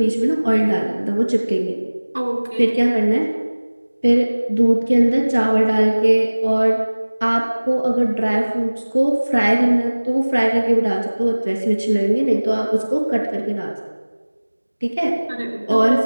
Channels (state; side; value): inverted; both; correlation -1.00